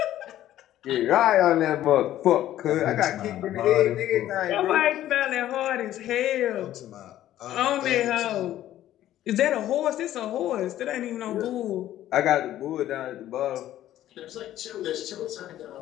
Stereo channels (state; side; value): quieter; right; 12.9 dB